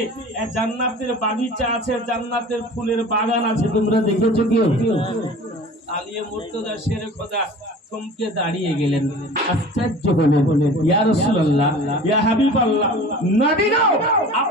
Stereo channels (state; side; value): normal; both; correlation 0.41